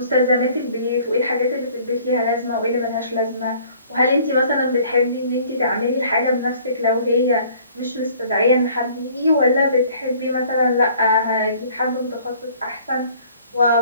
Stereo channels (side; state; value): both; inverted; correlation -0.55